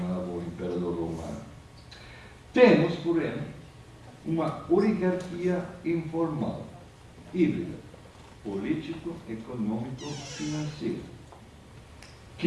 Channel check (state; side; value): identical; both; correlation 1.00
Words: o imperador romano. Temos, porém, uma oligarquia informal, híbrida, político, econômico, financeiro,